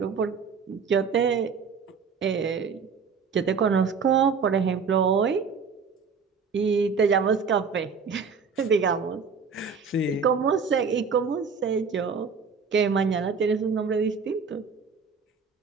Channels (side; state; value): left; quieter; 5.5 dB